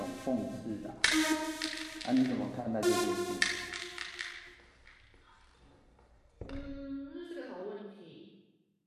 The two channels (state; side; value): identical; both; correlation 1.00